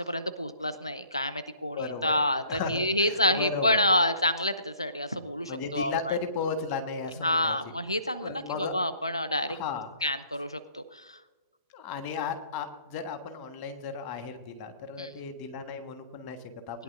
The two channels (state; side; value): inverted; both; correlation -0.56